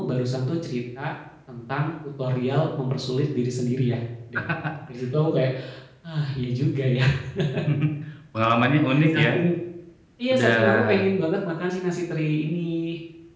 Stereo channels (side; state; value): both; identical; correlation 1.00